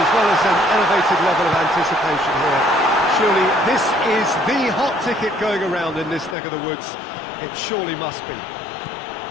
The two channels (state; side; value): drops out; right; at 6.4 s